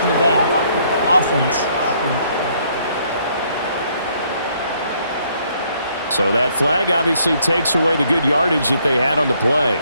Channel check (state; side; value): inverted; both; correlation -0.68